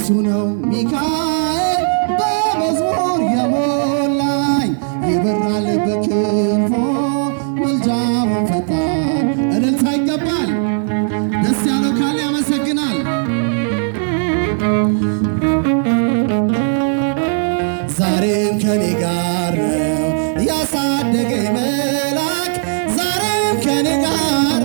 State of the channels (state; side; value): silent; left; 68 dB below the other